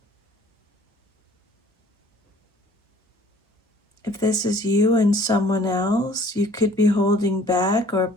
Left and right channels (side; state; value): both; normal; correlation 0.53